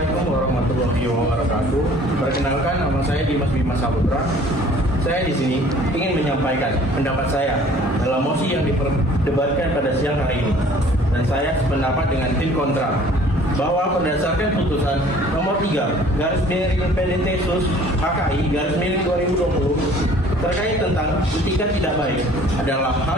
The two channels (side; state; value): both; normal; correlation 0.52